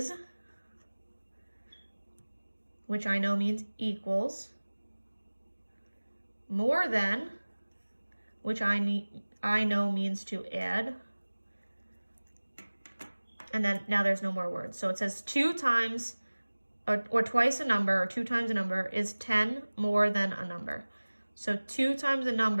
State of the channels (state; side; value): inverted; both; correlation -1.00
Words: which I know means equals, more than, which I know means to add. And then now there's no more words. So it says 2 times or twice a number or 2 times a number is 10 more than a number. So 2 times a